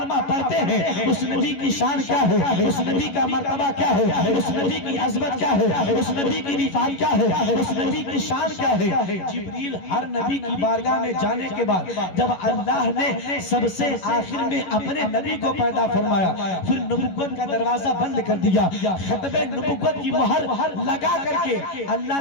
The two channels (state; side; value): late; right; 11 ms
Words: پڑھتے ہیں اس نبی کی شان کیا ہے، اس نبی کا مرتبہ کیا ہے، اس نبی کی عظمت کیا ہے، اس نبی کی رفعت کیا ہے، اس نبی کی شان کیا ہے۔ جبریل ہر نبی کی بارگاہ میں جانے کے بعد جب اللہ نے سب سے آخر میں اپنے نبی کو پیدا فرمایا، پھر نبوت کا دروازہ بند کر دیا، ختم نبوت کی مہر لگا کر کے